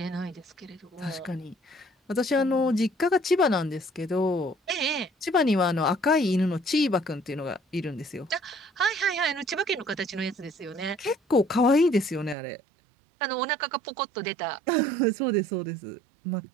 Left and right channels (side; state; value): left; drops out; at 12.4 s